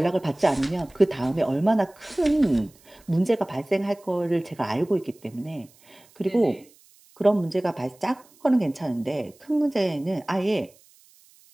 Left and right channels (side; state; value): right; noise; hiss, 29 dB below the sound